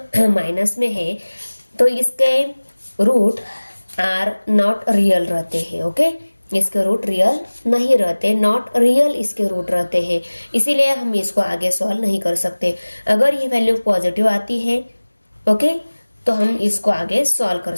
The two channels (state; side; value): inverted; both; correlation -1.00